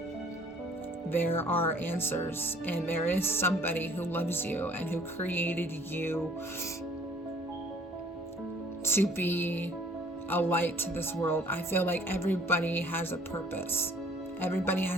There are answers, and there is somebody who loves you and who created you to be a light to this world. I feel like everybody has a purpose. Everybody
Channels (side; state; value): both; normal; correlation 0.56